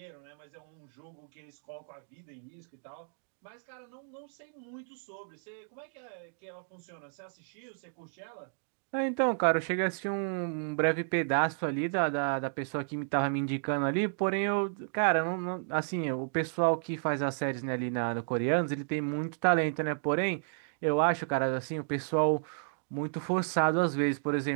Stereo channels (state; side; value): silent; left; digital silence